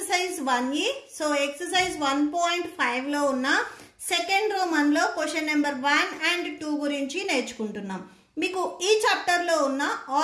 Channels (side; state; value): both; identical; correlation 1.00